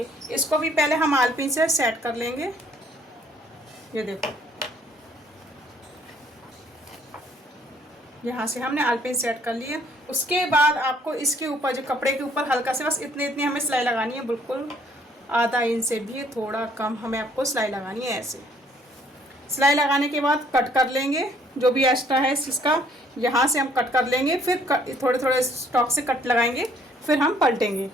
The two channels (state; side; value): normal; both; correlation 0.63